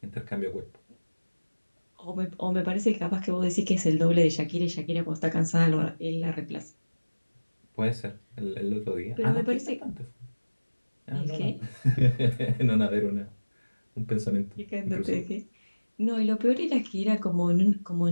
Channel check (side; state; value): both; inverted; correlation -1.00